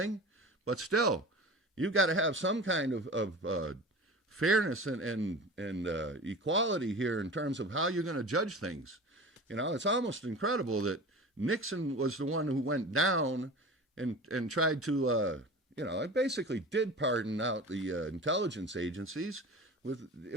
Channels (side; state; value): both; normal; correlation 0.35